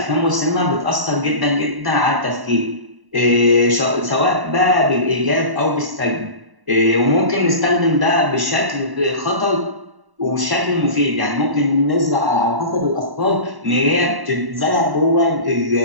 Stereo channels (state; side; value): late; left; 1.1 ms